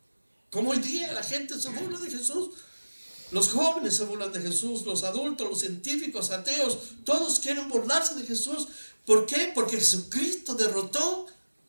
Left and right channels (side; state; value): both; inverted; correlation -1.00